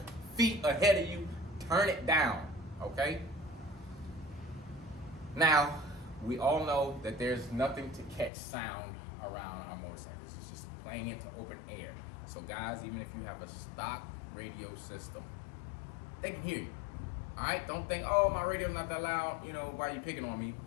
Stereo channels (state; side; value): drops out; right; at 8.3 s